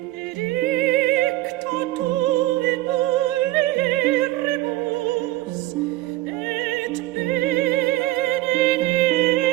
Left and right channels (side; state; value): left; quieter; 17.0 dB